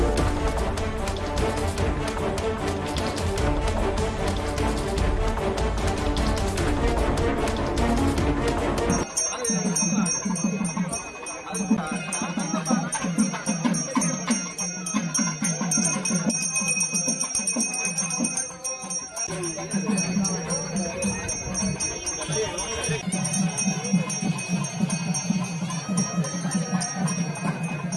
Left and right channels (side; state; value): both; identical; correlation 1.00